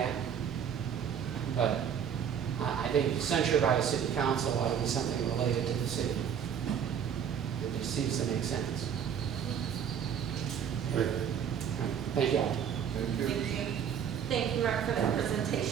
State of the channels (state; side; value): quieter; left; 8.2 dB